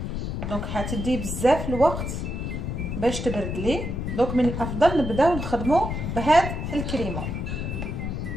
دونك حتدي بزاف الوقت باش تبرد لي. دونك من الافضل نبداو نخدموا بهاد الكريمه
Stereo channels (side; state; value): left; noise; rumble, 3 dB below the sound